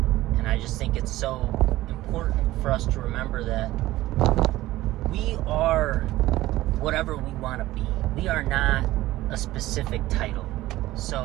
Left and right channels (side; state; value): left; quieter; 16.6 dB